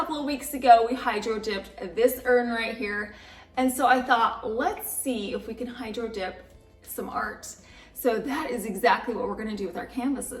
of weeks ago, we hydro dipped this urn right here. And so I thought, let's see if we can hydro dip some art. So that is exactly what we're gonna do with our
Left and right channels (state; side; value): identical; both; correlation 1.00